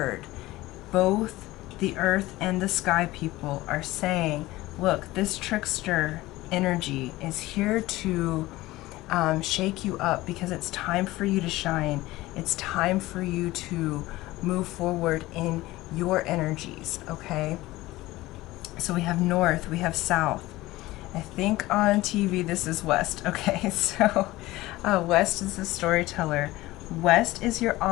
Both the earth and the sky people are saying, look, this trickster energy is here to shake you up, because it's time for you to shine. It's time for you to move forward in your energies. Okay, so we have north, we have south. I think on TV this is west. Okay, so west is the storyteller. West is your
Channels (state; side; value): quieter; right; 18.3 dB